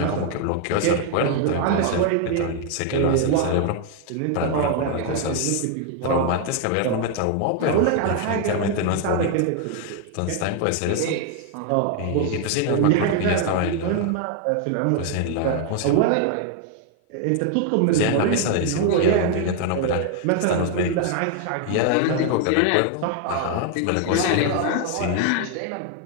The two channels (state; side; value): different; both; correlation 0.00